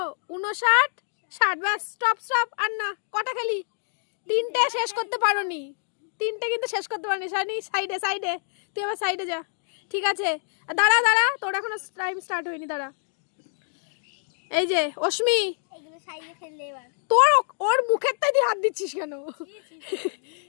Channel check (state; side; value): silent; right; digital silence